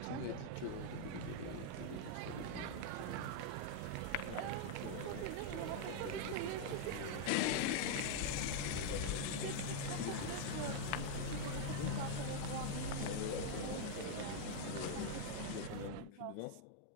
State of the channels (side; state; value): both; different; correlation 0.00